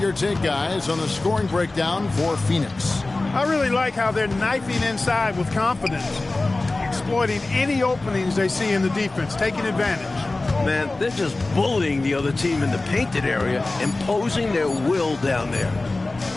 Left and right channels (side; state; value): right; quieter; 3.1 dB